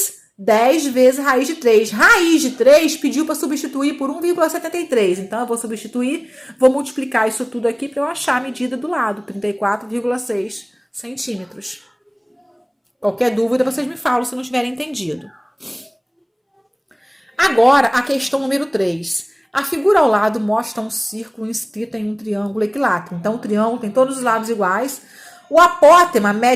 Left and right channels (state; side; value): identical; both; correlation 1.00